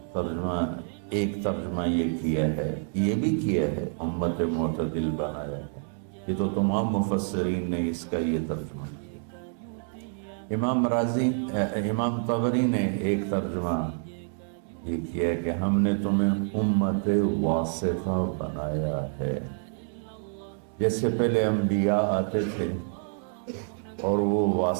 ترجمہ، ایک ترجمہ یہ کیا ہے، یہ بھی کیا ہے امت معتدل بنایا ہے۔ یہ تو تمام مفسرین نے اس کا یہ ترجمہ کیا۔ امام طبری نے ایک ترجمہ یہ کیا ہے کہ ہم نے تمہیں امت واسطہ بنایا ہے۔ جیسے پہلے انبیاء آتے تھے اور وہ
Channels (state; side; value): silent; left; 60 dB below the other